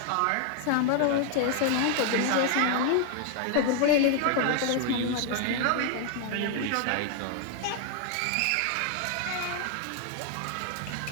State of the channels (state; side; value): different; both; correlation 0.00